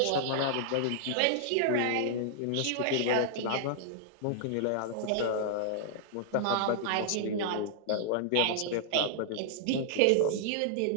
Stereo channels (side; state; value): both; different; correlation -0.01